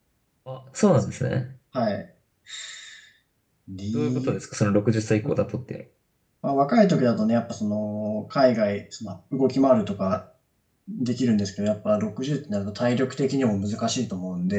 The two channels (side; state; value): both; identical; correlation 1.00